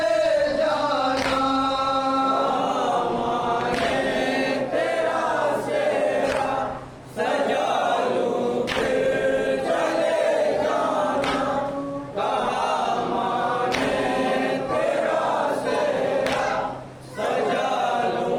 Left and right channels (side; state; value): both; identical; correlation 1.00